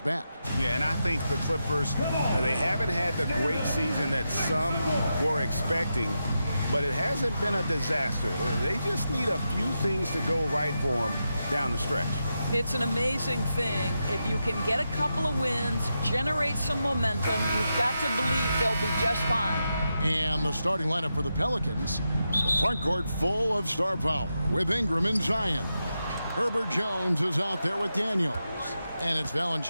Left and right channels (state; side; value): inverted; both; correlation -0.87